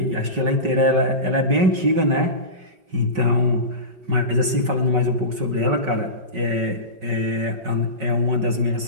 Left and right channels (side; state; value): left; late; 5.3 ms